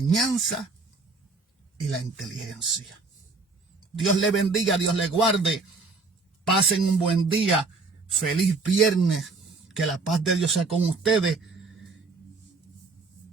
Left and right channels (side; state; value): left; quieter; 4.0 dB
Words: y la inteligencia. Dios le bendiga, Dios le guarde. Pasen un buen día. Feliz viernes. Que la paz de Dios sea con ustedes.